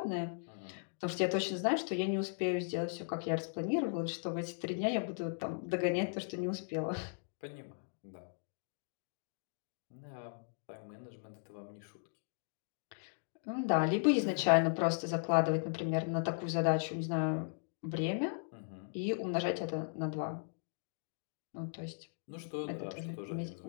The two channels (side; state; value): right; silent; digital silence